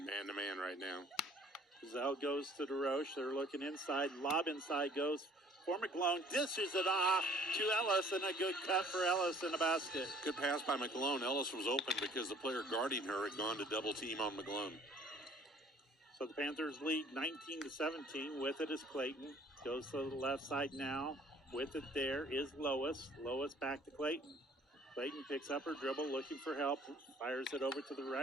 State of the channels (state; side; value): normal; both; correlation 0.55